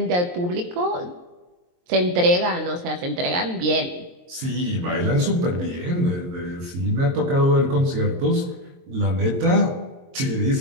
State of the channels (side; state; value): left; late; 22 ms